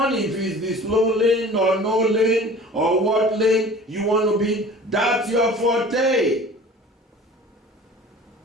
it, if it's the slow lane or no lane or what lane you want to be, that's your forte.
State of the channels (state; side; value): normal; both; correlation 0.43